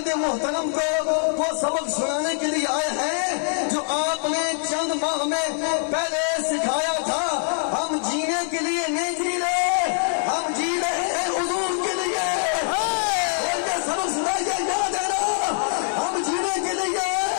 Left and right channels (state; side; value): silent; right; digital silence